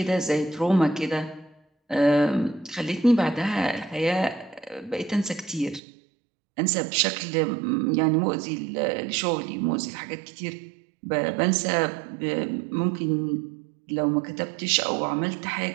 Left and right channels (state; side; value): drops out; left; at 5.8 s